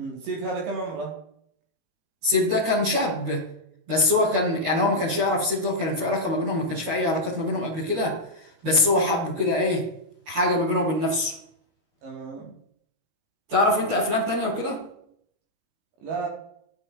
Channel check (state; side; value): late; left; 19 ms